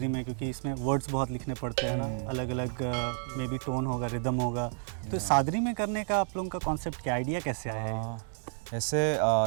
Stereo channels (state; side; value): silent; left; 57 dB below the other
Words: में? क्योंकि इसमें वर्ड्स बहुत लिखने पड़ते हैं ना, अलग अलग मे बी टोन होगा, रिदम होगा, तो सादरी में करने का आप लोगों का कॉन्सेप्ट क्या, आइडिया कैसे आया है? ऐसे